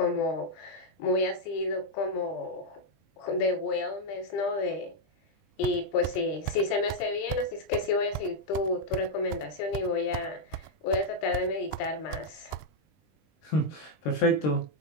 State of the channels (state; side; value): late; right; 20 ms